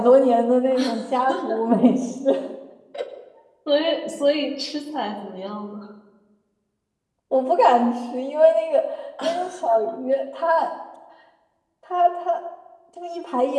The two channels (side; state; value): both; identical; correlation 1.00